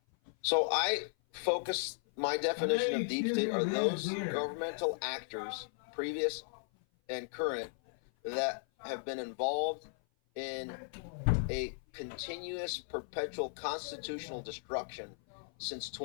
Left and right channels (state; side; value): silent; right; 54 dB below the other